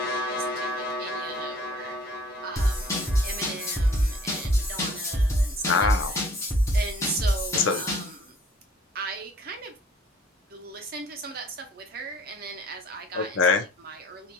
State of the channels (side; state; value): both; normal; correlation 0.54